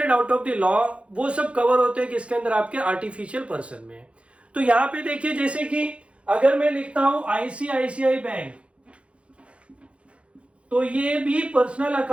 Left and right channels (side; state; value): left; late; 0.061 ms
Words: out of the law, वो सब कवर होते हैं किसके अंदर, आपके आर्टिफिशियल पर्सन में। तो यहां पे देखिए, जैसे कि अगर मैं लिखता हूं आईसीआईसीआई बैंक, तो ये भी पर्सनल